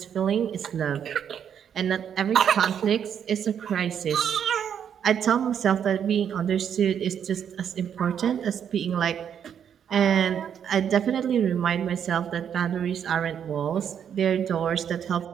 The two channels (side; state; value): left; quieter; 8.5 dB